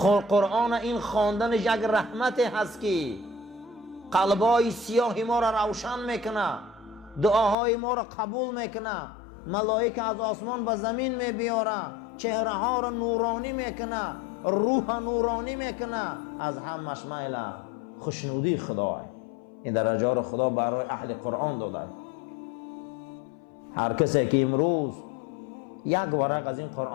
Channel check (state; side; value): drops out; right; at 7.6 s